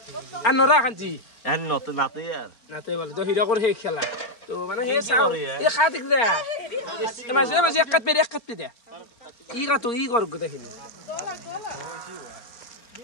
আৰু নৰা শান্তি এন নত নাতে यार নাতে বলে তো হিৰকৰ সেই খেলা তো মানে সেই চাও এই খা দেখিলে মাজে মাজে এক কাট দে ই কাটো ই কৰ গোটেইখিনি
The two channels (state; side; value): late; right; 4.4 ms